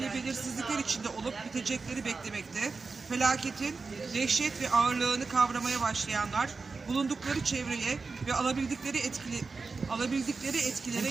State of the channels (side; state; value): left; quieter; 4.3 dB